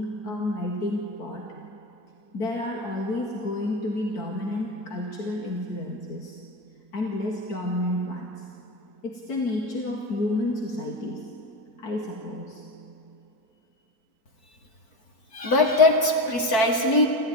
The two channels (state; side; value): late; right; 4.5 ms